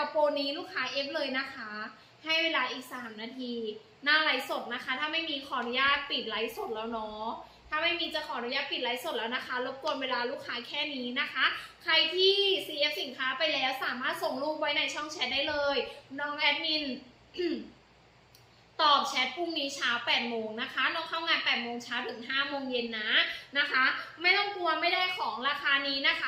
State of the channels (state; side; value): identical; both; correlation 1.00